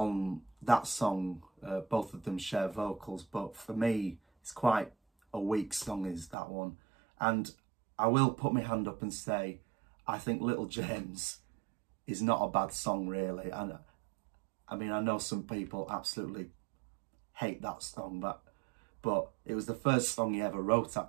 that song both of them share vocals, but for me it's quite a weak song is that one. And I will put my hand up and say I think Little James is not a bad song really. And I mean, I know some people absolutely hate that song, but it was the first song he ever wrote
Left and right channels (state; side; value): drops out; left; at 6.4 s